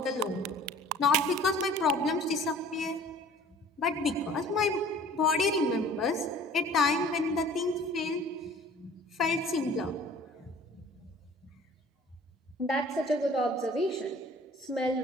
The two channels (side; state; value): both; normal; correlation 0.49